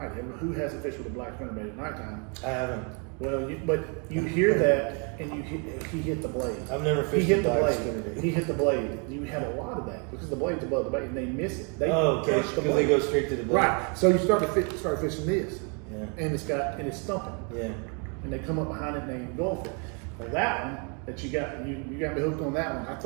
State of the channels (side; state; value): left; quieter; 36.6 dB